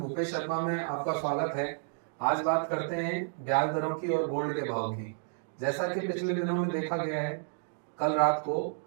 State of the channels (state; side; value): silent; left; digital silence